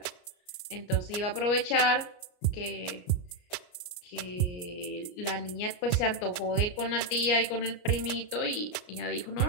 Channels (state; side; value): late; right; 34 ms